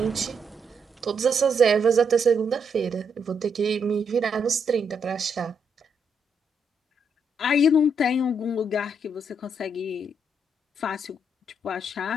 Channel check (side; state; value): both; normal; correlation 0.77